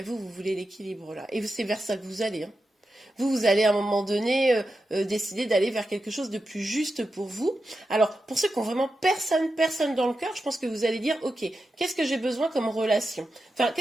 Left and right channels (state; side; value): normal; both; correlation 0.89